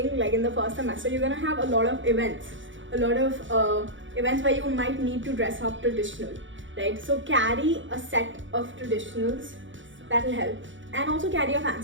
like in the first semester, you're gonna have a lot of events where you might need to dress up traditional, right? So carry a set of traditionals, that will help. And also carry a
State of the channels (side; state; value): left; late; 0.56 ms